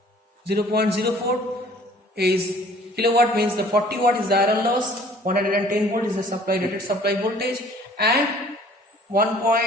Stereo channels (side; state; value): both; normal; correlation 0.53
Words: 0.04 is kilowatt, means the 40 watt is the iron loss, 110 volt is the supply rated supply voltage, and